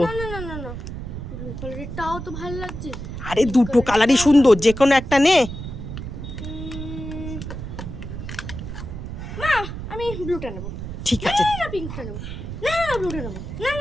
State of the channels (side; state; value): right; noise; rumble, 8 dB below the sound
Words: না না না না, ব্লু কালারেরটাও তো ভালো লাগছে। আরে দুটো কালারই সুন্দর, যে কোনো একটা নে। মা আমি ব্লুটা নেব। ঠিক আছে। না পিঙ্কটা নেব। না না ব্লুটা নেব। না